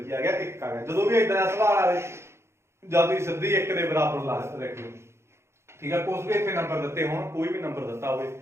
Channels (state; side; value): late; left; 0.13 ms